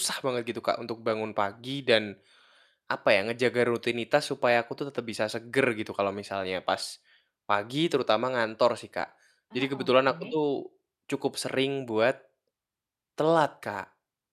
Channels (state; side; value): identical; both; correlation 1.00